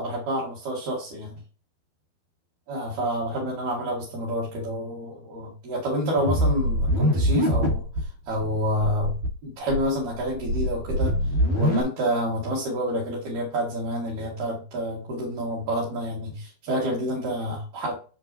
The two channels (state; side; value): late; left; 12 ms